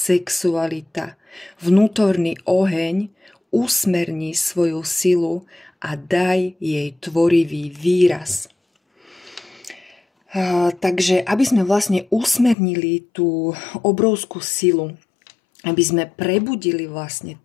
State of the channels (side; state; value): right; drops out; at 12.6 s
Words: vnútorný oheň, usmerni svoju silu a daj jej tvorivý výraz. Takže aby sme vlastne usmernili tú obrovskú silu, aby sme prebudili vlastne